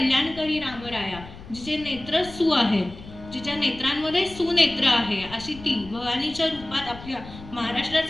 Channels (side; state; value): left; noise; rumble, 16 dB below the sound